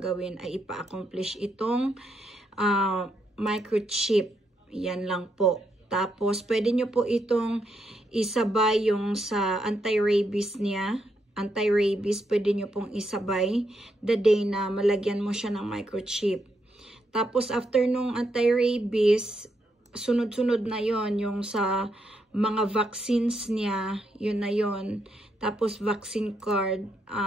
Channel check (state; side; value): normal; both; correlation 0.79